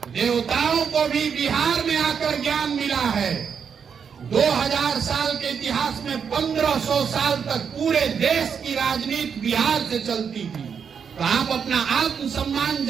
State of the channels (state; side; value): quieter; left; 6.8 dB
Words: देवताओं को भी बिहार में आकर ज्ञान मिला है। 2000 साल के इतिहास में 1500 साल तक पूरे देश की राजनीति बिहार से चलती थी। तो आप अपना आत्मसम्मान